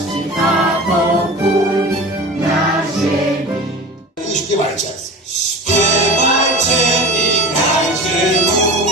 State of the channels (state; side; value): normal; both; correlation 0.33